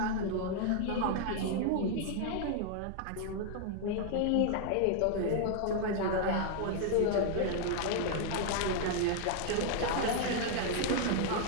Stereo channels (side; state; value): both; different; correlation 0.00